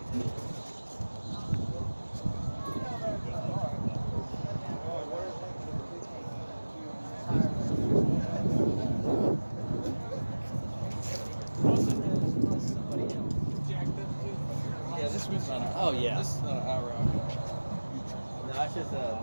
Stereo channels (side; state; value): both; inverted; correlation -1.00